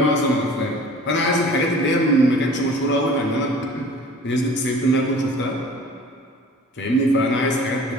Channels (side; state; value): both; normal; correlation 0.46